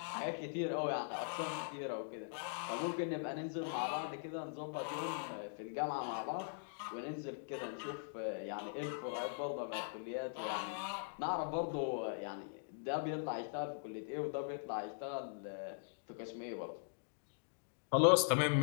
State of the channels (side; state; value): right; silent; digital silence